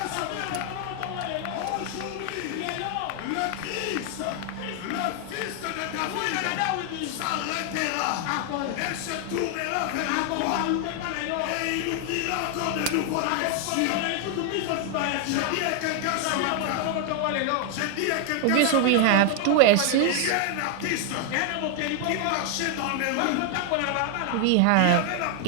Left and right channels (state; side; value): different; both; correlation 0.00